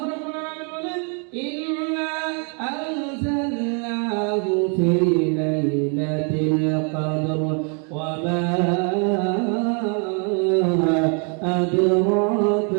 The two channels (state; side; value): quieter; left; 39.0 dB